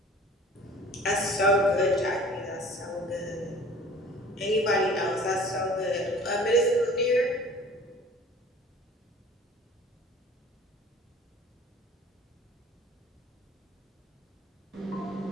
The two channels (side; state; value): both; normal; correlation 0.47